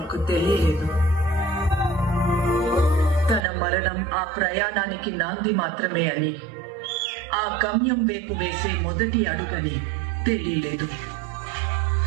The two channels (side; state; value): left; drops out; at 3.5 s